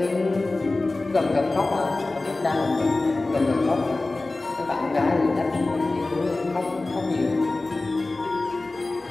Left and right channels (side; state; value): right; quieter; 3.1 dB